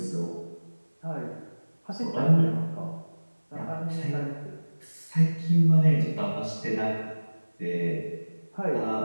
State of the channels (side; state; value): both; inverted; correlation -1.00